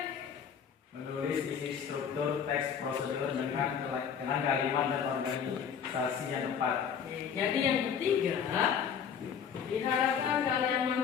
Menulis isi struktur teks prosedur dengan kalimat dan organisasi yang tepat. Jadi yang ketiga, diharapkan kalian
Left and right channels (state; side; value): quieter; right; 7.5 dB